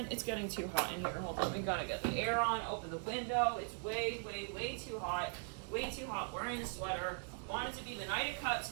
It's getting too hot in here. Hold on, we gotta get the air on, open the window. It's way, way, way too hot. Way too hot. Wearing a sweater. Want it to be the Knight of Cups,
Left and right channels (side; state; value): left; silent; 51 dB below the other